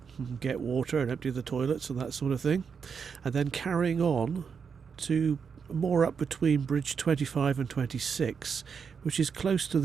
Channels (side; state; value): left; quieter; 6.3 dB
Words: and get water and empty the toilets and that sort of thing, and then carrying on to more up between Bridge 25 and 26, which is close to